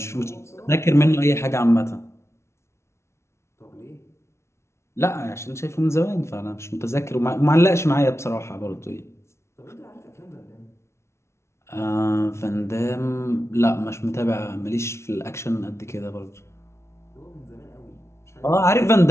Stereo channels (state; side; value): late; right; 0.13 ms